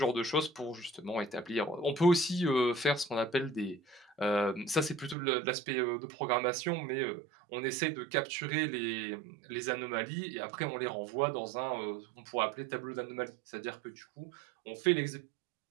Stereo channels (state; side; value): drops out; left; at 5.2 s